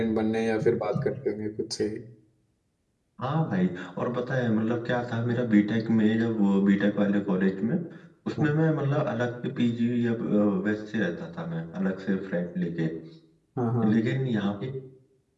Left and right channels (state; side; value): identical; both; correlation 1.00